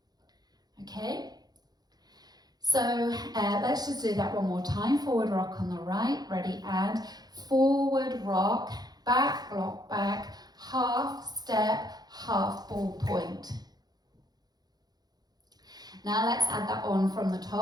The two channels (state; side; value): late; left; 0.19 ms